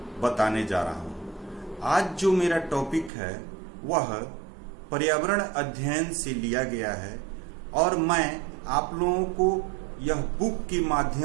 बताने जा रहा हूँ। आज जो मेरा टॉपिक है वह पर्यावरण अध्ययन से लिया गया है और मैं आप लोगों को यह बुक के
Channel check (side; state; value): left; drops out; at 3.1 s